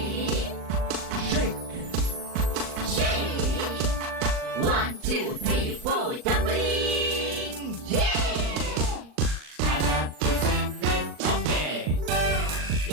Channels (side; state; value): left; late; 39 ms